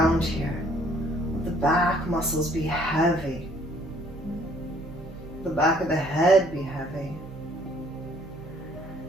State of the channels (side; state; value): right; noise; hum, 18 dB below the sound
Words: here. Let the back muscles be heavy. The back of the head be heavy.